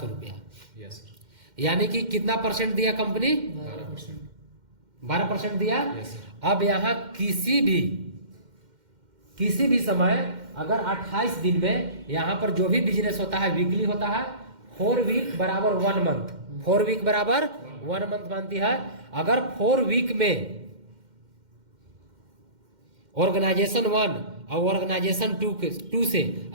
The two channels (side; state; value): left; late; 2.1 ms